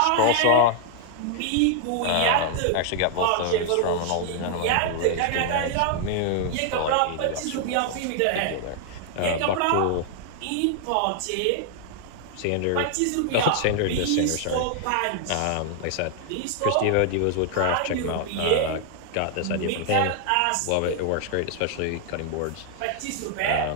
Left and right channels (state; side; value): different; both; correlation 0.00